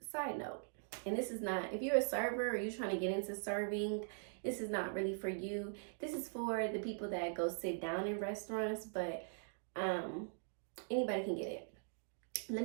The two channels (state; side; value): silent; left; digital silence